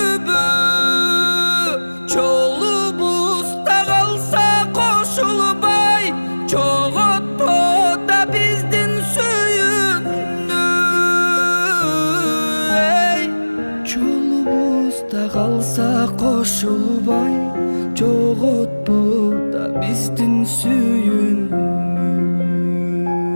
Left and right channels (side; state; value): both; inverted; correlation -1.00